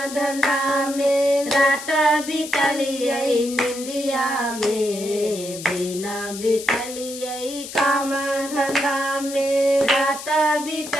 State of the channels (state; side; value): noise; left; hiss, 11 dB below the sound